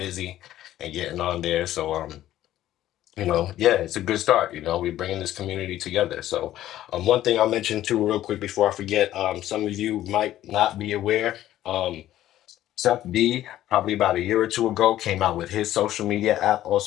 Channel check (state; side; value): quieter; right; 13.4 dB